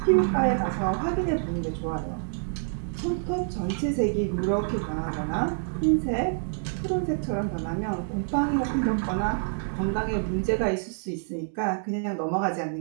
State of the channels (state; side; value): silent; left; digital silence